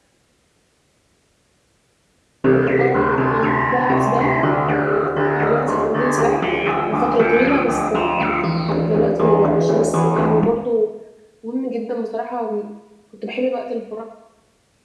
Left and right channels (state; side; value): identical; both; correlation 1.00